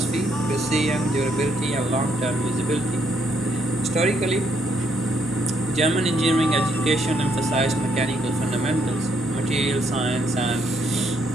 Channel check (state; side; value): normal; both; correlation 0.73